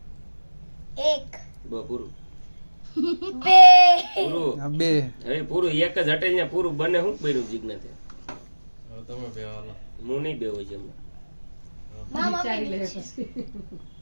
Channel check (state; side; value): inverted; both; correlation -1.00